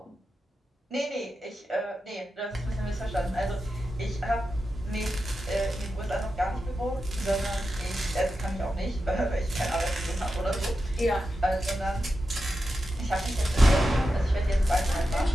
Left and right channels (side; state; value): both; normal; correlation 0.90